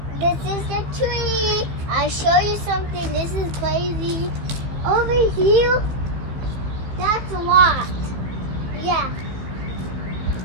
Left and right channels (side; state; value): left; late; 15 ms